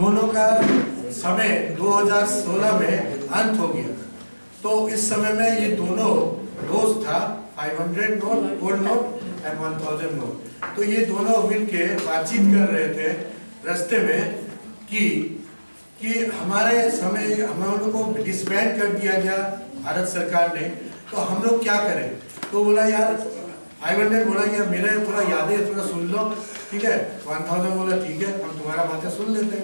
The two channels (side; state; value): both; inverted; correlation -1.00